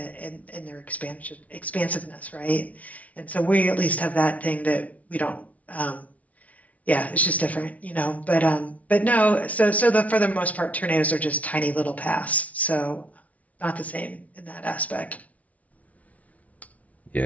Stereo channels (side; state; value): right; late; 0.069 ms